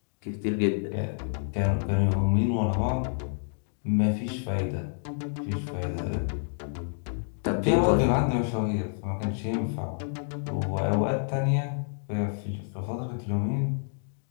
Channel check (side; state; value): right; silent; digital silence